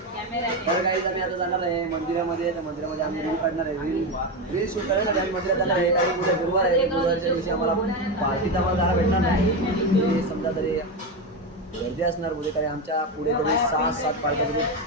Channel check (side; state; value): both; normal; correlation 0.13